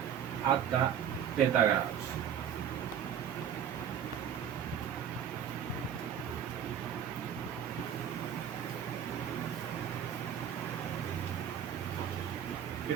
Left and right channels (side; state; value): left; quieter; 9.0 dB